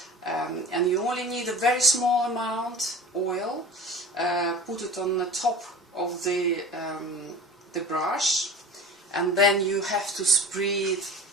And you only need a very small amount oil. Put it on the top of the brush, and then you have to spread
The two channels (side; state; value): both; normal; correlation 0.37